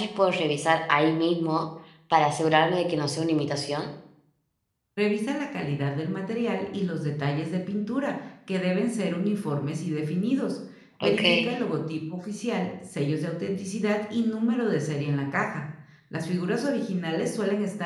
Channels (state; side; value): identical; both; correlation 1.00